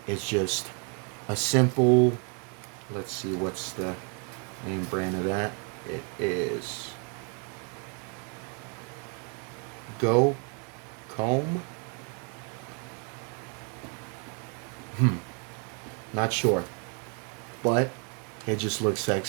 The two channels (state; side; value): quieter; left; 36.6 dB